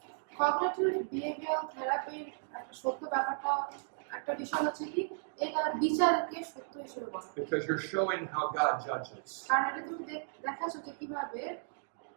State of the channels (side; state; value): left; silent; digital silence